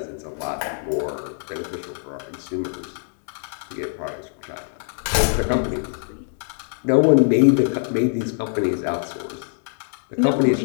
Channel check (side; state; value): right; silent; digital silence